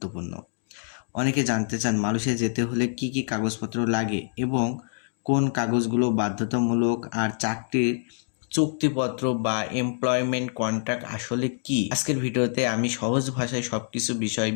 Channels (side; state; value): right; silent; digital silence